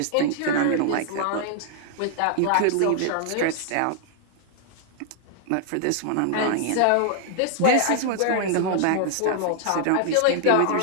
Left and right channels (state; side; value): different; both; correlation 0.00